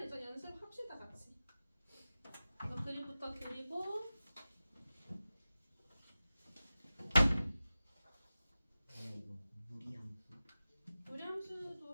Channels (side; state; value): both; inverted; correlation -0.95